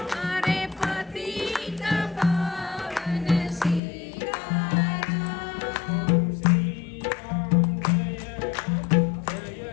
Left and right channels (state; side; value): drops out; right; at 3.8 s